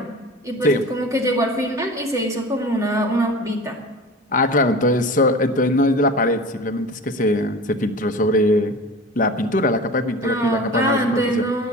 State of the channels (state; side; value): normal; both; correlation 0.36